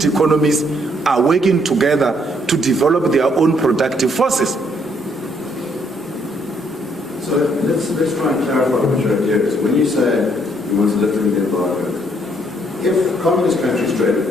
economies are working together to develop their own productive forces. So let's try and clarify what your idea is. When you say you want to lift the embargo, if communist countries trade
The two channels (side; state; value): both; normal; correlation 0.69